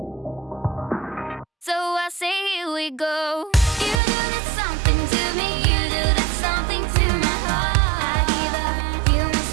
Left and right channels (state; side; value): drops out; left; at 4.0 s